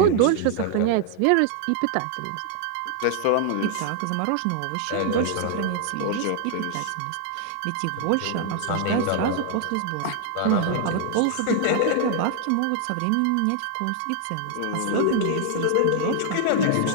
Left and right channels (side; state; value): both; different; correlation 0.00